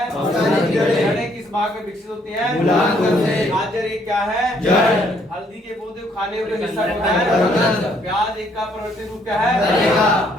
जड़ें किस भाग में विकसित होती हैं? गाजर एक क्या है? जड़। हल्दी के पौधे खाने योग्य हिस्सा होता है? प्याज एक का परिवर्तित रूप क्या है?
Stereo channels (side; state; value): both; normal; correlation 0.67